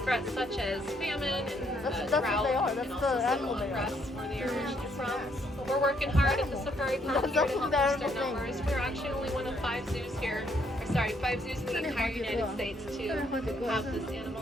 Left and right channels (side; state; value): both; normal; correlation 0.71